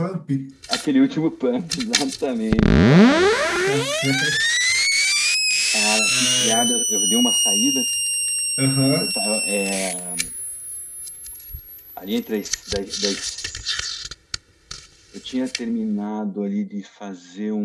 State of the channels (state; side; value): identical; both; correlation 1.00